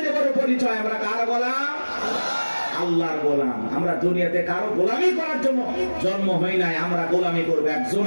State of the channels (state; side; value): inverted; both; correlation -1.00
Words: বড় পরিচয়। আমরা কার গোলাম? আল্লাহর গোলাম। আমরা দুনিয়াতে কারো গোলামি করার জন্য জন্ম হই নাই, আমরা গোলামি করবো একজন,